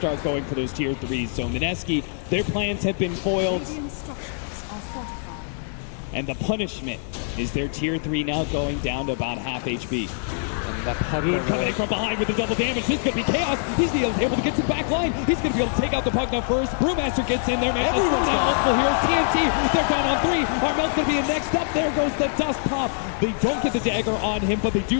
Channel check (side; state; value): right; silent; digital silence